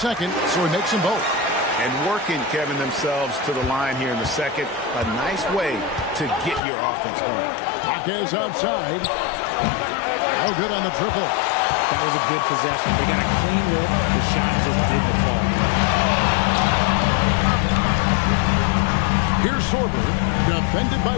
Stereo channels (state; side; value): drops out; right; at 6.6 s